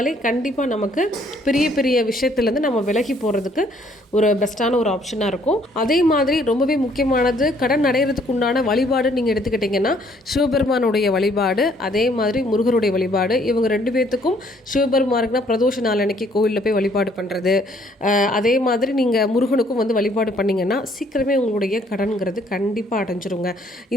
கண்டிப்பாக நமக்கு பெரிய பெரிய விஷயத்துலேருந்து நம்ம விலகி போகிறதுக்கு ஒரு பெஸ்ட்டான ஒரு ஆப்ஷனாக இருக்கும். அதே மாதிரி ரொம்பவே முக்கியமானது கடன் அடைகிறதுக்கு உண்டான வழிபாடு நீங்கள் எடுத்துக்கிட்டிங்கன்னா சிவபெருமானுடைய வழிபாடு, அதே மாதிரி முருகருடைய வழிபாடு. இவங்க 2 பேர்த்துக்கும் சிவபெருமானுக்குனா பிரதோஷ நாள் அன்னைக்கு கோவிலில் போய் வழிபாடு பண்ணுறது, அதே மாதிரி நீங்கள் முருகனுக்கும் வந்து வழிபாடு பண்ணிங்கன்னா சீக்கிரமே உங்களுடைய கடன்கிறது கண்டிப்பாக அடைஞ்சிருங்க.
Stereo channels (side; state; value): both; normal; correlation 0.64